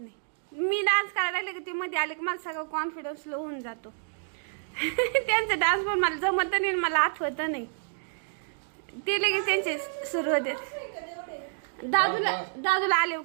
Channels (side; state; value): left; silent; digital silence